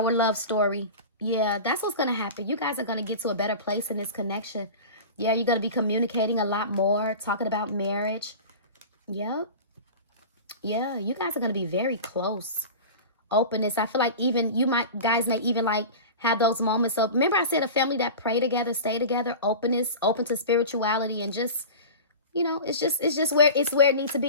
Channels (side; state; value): both; inverted; correlation -0.33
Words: love story. Yeah, that's what's going to happen. You guys are going to get to a better place in this connection. Yeah, you're going to be communicating a lot more, talking about marriage. Yep. Yeah, you guys are going to be very close. Openness. I feel like even you guys may even like have those moments of, remember I said a family that pray together, stay together, openness, open to spirituality, and just, you know, it's just where it needs to